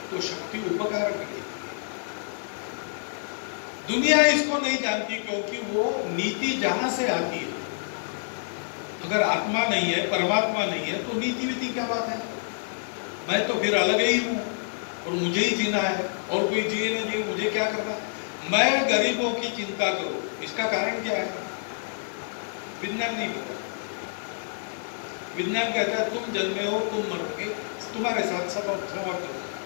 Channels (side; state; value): right; silent; digital silence